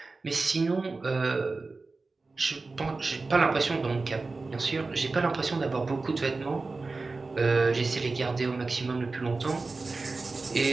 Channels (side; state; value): left; quieter; 3.8 dB